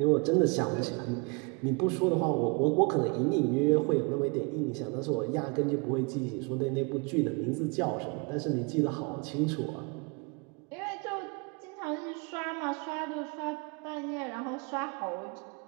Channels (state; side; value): quieter; left; 31.6 dB